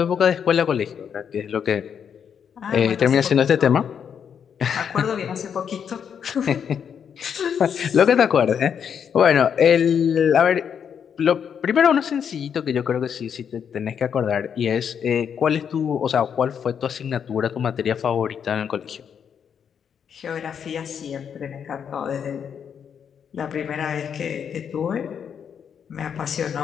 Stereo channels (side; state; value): right; quieter; 7.7 dB